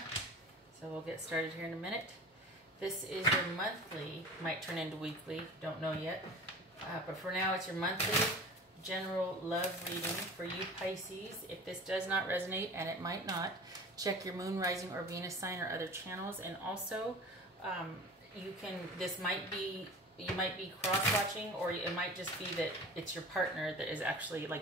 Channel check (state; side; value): normal; both; correlation 0.38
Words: so we'll get started here in a minute. This is your monthly, might turn into weekly, don't know yet. But for now it's your monthly general love reading for you Pisces. If this does not resonate, and it might not, check your moon, rising, or Venus sign or other channels. And also, you might be cross-watching, or it might just be that it's your partner that is actually,